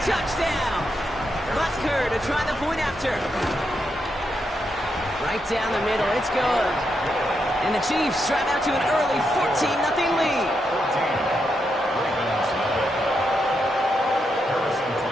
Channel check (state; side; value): normal; both; correlation 0.82